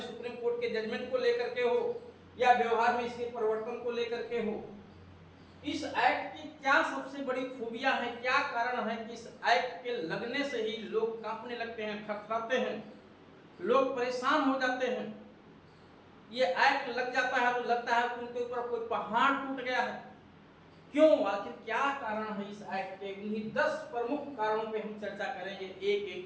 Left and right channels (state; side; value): identical; both; correlation 1.00